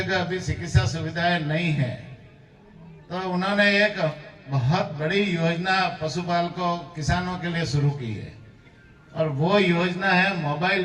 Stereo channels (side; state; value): both; identical; correlation 1.00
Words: अभी चिकित्सा सुविधाएं नहीं है, तो उन्होंने एक बहुत बड़ी योजना पशुपालकों किसानों के लिए शुरू की है और वो योजना है